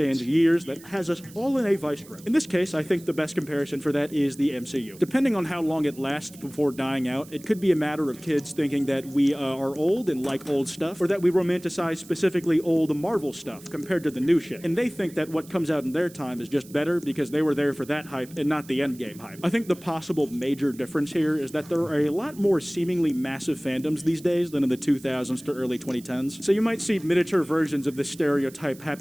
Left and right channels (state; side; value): noise; right; hiss, 21 dB below the sound